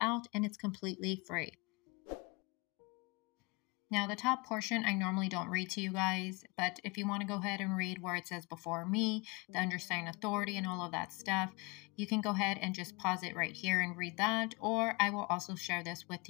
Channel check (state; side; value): quieter; right; 27.5 dB